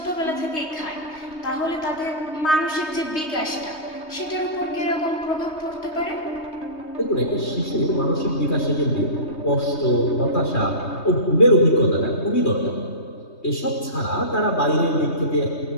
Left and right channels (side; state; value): right; late; 3.2 ms